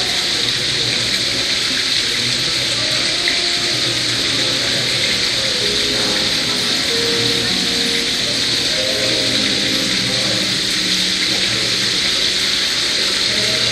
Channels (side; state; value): both; identical; correlation 1.00